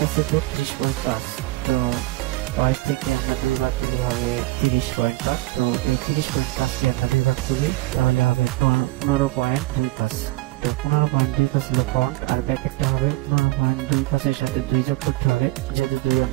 আছে 32.5, তো ওয়েস্ট থেকে আমরা 2 ভাগ দিলে হবে 30.5। তো এই 30.5 কে আমরা 2 ভাগ করি তাহলে হবে 15.25। তো 15.25 হলো ফ্রন্ট, আর ব্যাকেটটা হবে 15.25 এর সাথে 2 যোগ করতে হবে, যেহেতু 2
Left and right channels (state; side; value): quieter; left; 18.9 dB